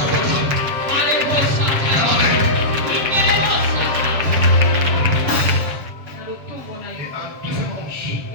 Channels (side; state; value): left; late; 7.3 ms